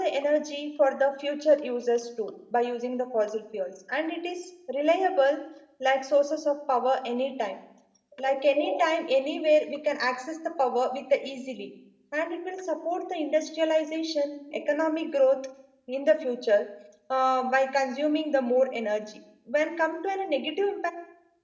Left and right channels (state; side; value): identical; both; correlation 1.00